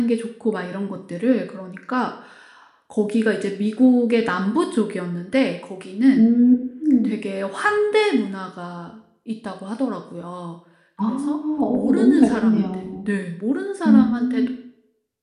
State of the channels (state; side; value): identical; both; correlation 1.00